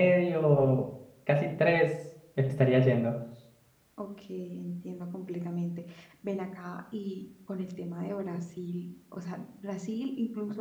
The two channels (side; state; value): both; identical; correlation 1.00